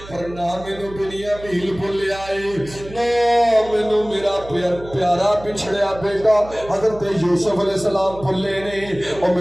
پر نہ مینوں بنیامین بھولیا ہے نہ مینوں میرا پیارا پچھڑیا بیٹا حضرت یوسف علیہ السلام بھولے نے او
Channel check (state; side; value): noise; right; hum, 16 dB below the sound